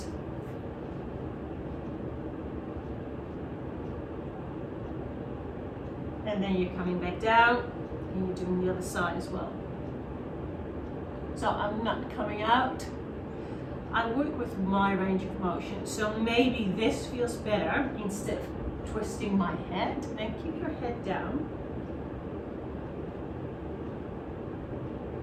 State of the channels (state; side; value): identical; both; correlation 1.00